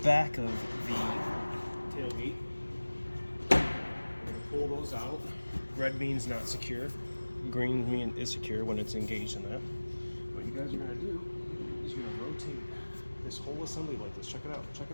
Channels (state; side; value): inverted; both; correlation -1.00